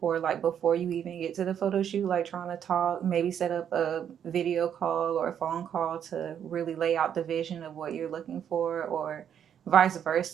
like before you even get to the photo shoot, like trying to talk, maybe set up a video call or a phone call to really lay out the vision of what you're looking for, or vice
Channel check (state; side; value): quieter; left; 8.9 dB